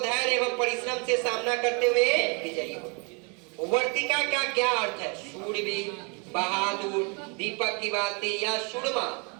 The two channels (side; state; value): left; quieter; 33.8 dB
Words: धैर्य एवं परिश्रम से सामना करते हुए विजयी हो। वर्तिका का क्या अर्थ है? शूरवीर, बहादुर, दीपक की बाती या सुरमा?